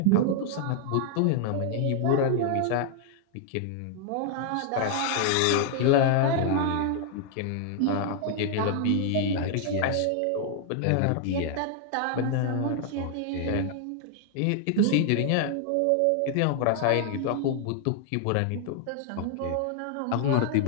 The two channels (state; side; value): different; both; correlation 0.00